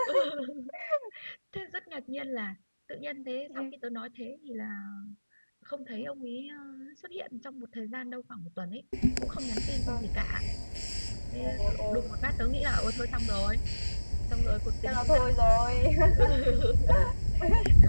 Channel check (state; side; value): inverted; both; correlation -1.00